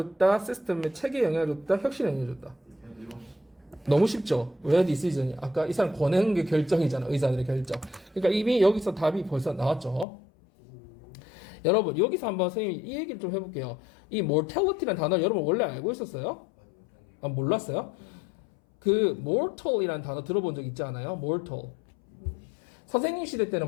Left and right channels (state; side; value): drops out; right; at 10.1 s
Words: 시스템의 체계에 영향을 줬다? 혁신에 영향을 줬다? 너무 쉽죠? 왜 디시전이? 아까 이 사람 권하는 게 결정이잖아. 의사들의 결정. 그러니까 이미 여기서 답이 벌써 나왔죠. 여러분, 여기서 한번 선생님이 이 얘기를 좀 해볼게요. 이 mortality라는 단어 여러분 원래 알고 있었어요? 아, 몰랐어요? 그 mortal이라는 단어 들어본 적 있지 않아요? mortal. 선생님 시대